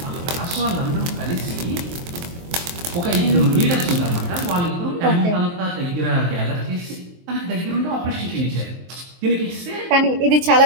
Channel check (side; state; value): left; late; 23 ms